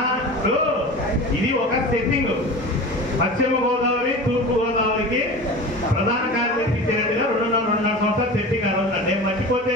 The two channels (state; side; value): normal; both; correlation 0.33